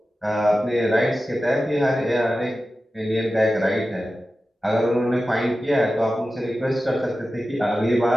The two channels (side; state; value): both; normal; correlation 0.93